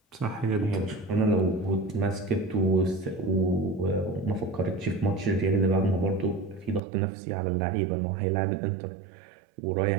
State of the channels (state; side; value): drops out; left; at 6.8 s